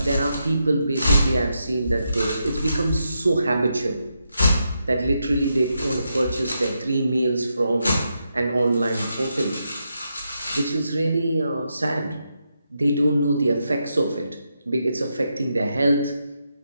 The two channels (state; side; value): inverted; both; correlation -0.83